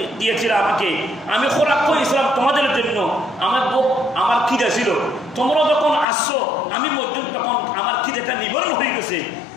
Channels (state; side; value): drops out; right; at 6.1 s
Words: দিয়েছিল আমাকে আমি খোরাক করেছিলাম তোমাদের জন্য আমার খিদে ছিল তোমরা যখন আসছো আমি মসজিদ তখন আমার খিদেটা নিবারণ হয়ে গেছে